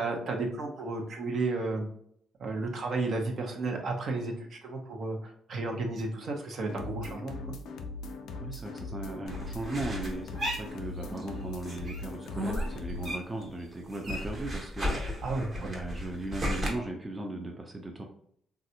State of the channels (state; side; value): normal; both; correlation 0.72